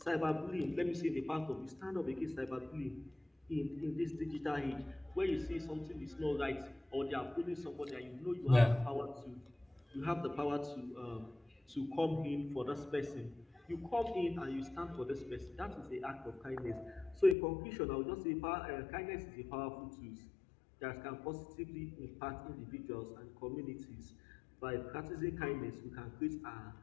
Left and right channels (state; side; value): drops out; right; at 17.4 s